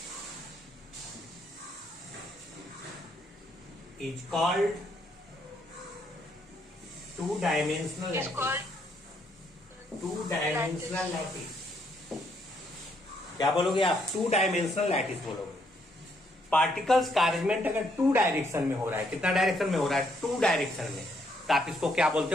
is called two dimensional Is lattice। called two dimensional lattice. क्या बोलोगे आप? टू डायमेंशनल लैटिस बोलोगे। Particles का अरेंजमेंट अगर to direction में हो रहा है, कितना डायरेक्शन में हो रहा है? टू डायरेक्शन में, तो आप इसको क्या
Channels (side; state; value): both; normal; correlation 0.72